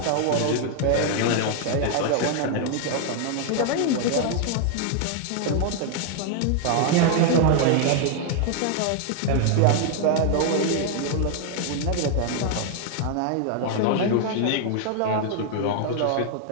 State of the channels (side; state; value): both; different; correlation 0.00